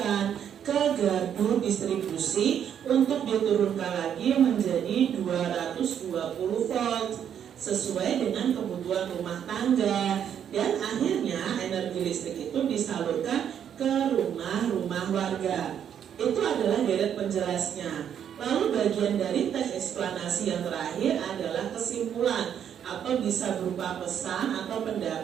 ke gardu distribusi untuk diturunkan lagi menjadi 220 volt sesuai dengan kebutuhan rumah tangga, dan akhirnya energi listrik itu disalurkan ke rumah-rumah warga. Itu adalah deret penjelasnya. Lalu bagian dari teks eksplanasi yang terakhir adalah kesimpulan atau bisa berupa pesan atau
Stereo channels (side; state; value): left; quieter; 8.9 dB